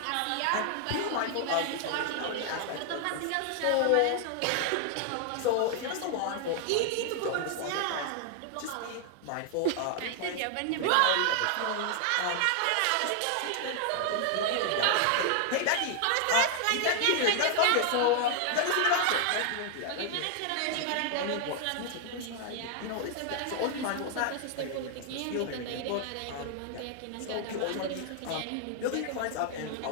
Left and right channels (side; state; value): both; different; correlation 0.00